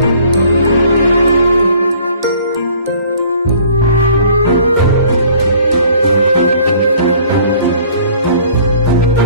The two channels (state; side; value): inverted; both; correlation -0.54